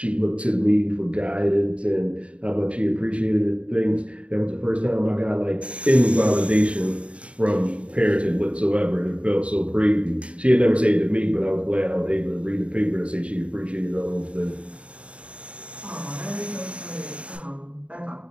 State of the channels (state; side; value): late; left; 0.062 ms